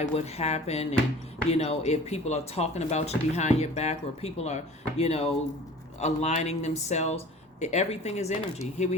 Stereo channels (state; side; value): normal; both; correlation 0.43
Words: what happened, and if people are talking about you behind your back, or people are aligning themselves. Everything is energy. Here